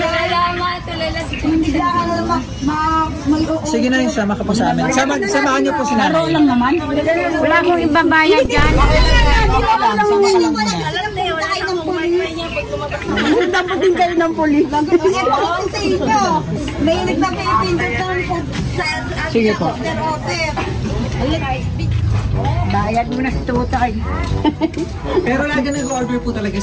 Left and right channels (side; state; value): both; identical; correlation 1.00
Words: Hindi lang Sige na, sama ka po sa amin. Samahan niyo po si nanay. lang naman. Wala akong ibabayad dyan. Dapat din kayo ng polis. Mahilig magpipindot ng food Sige po. Bayad mo na sa tutay. Pero lagi nag-order po talaga